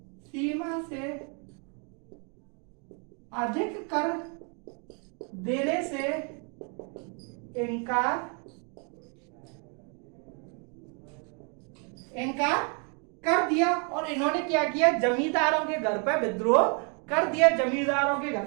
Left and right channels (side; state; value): left; quieter; 37.1 dB